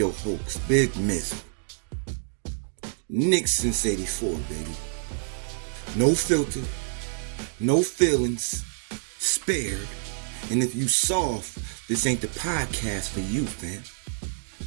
host, Big Mizal. Knicks since 84, baby. No filter, no feelings, spared. And if you soft, this ain't the podcast for you, fam.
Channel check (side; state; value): left; silent; digital silence